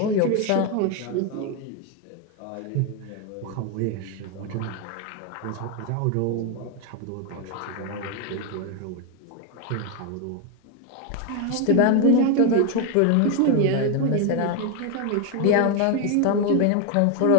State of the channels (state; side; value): different; both; correlation 0.01